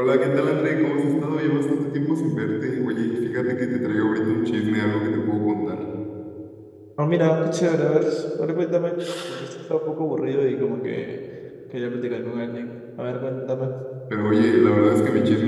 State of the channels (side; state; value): both; identical; correlation 1.00